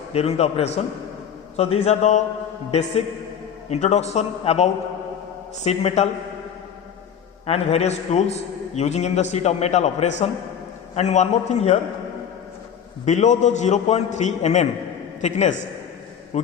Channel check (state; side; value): quieter; right; 8.2 dB